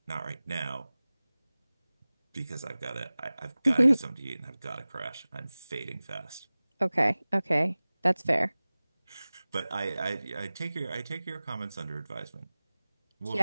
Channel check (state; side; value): inverted; both; correlation -0.98